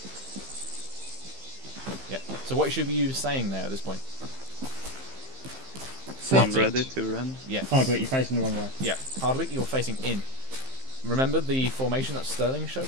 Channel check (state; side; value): late; left; 15 ms